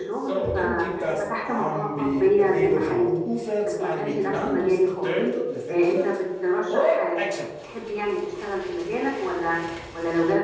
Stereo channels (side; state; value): both; identical; correlation 1.00